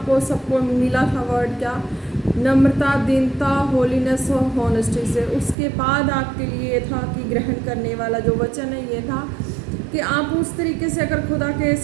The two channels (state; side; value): drops out; left; at 5.6 s